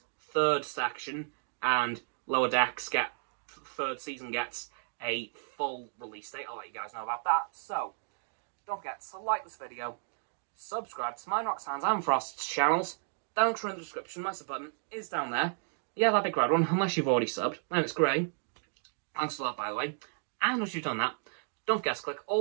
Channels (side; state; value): left; silent; digital silence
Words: 3rd section and Lower Decks 3rd season gets a full release date. I'll let you guys know about that. So, don't forget to like this video, subscribe to mine, Roxanne's and Frost's channels. Down in the description, my sub button is down there. Yeah, that big red one, unless you've already subbed, then it's grey. Thanks for that, by the way. And once you've done that, don't forget to click